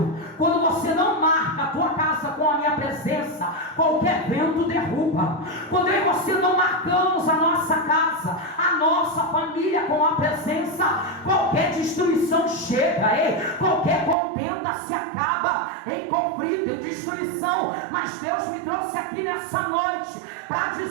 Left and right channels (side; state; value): left; drops out; at 14.2 s